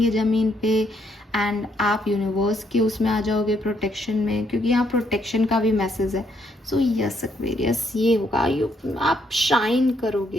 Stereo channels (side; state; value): both; normal; correlation 0.73